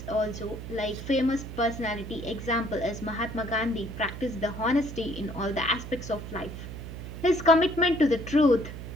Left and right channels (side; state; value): right; noise; hum, 9 dB below the sound